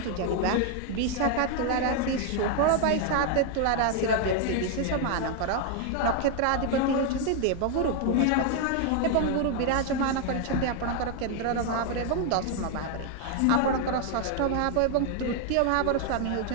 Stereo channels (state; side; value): different; both; correlation 0.00